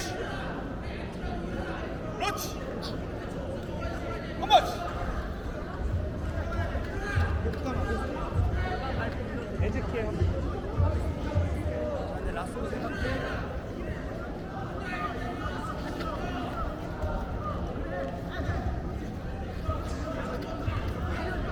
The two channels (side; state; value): both; identical; correlation 1.00